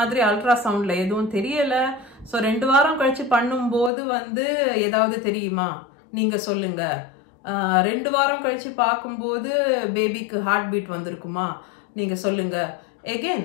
அல்ட்ராசவுண்ட்ல எதுவும் தெரியல, ஸோ 2 வாரம் கழிச்சு பண்ணும்போது வந்து ஏதாவது தெரியுமா நீங்க சொல்லுங்க. 2 வாரம் கழிச்சு பார்க்கும்போது பேபிக்கு ஹார்ட் பீட் வந்திருக்குமா நீங்க சொல்லுங்க.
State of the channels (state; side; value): drops out; right; at 3.9 s